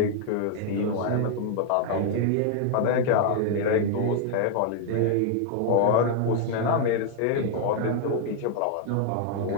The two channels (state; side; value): different; both; correlation 0.00